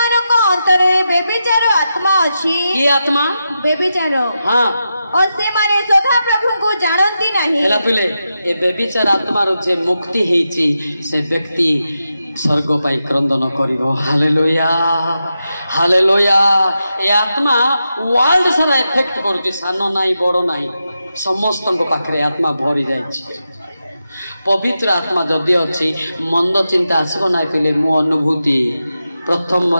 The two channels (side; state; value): both; inverted; correlation -0.88